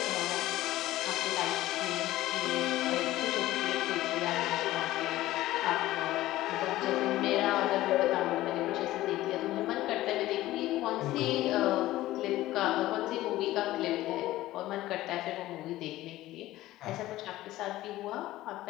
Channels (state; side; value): quieter; right; 15.9 dB